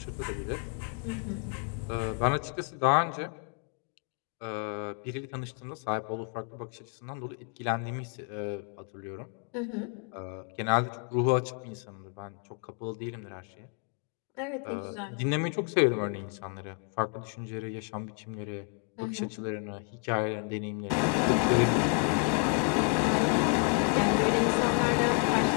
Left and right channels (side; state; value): right; quieter; 36.9 dB